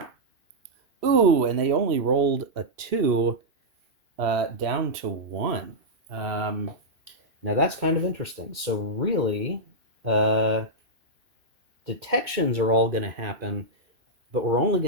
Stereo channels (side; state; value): left; late; 2.6 ms